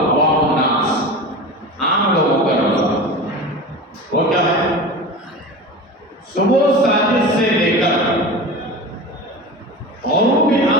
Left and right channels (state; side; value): normal; both; correlation 0.30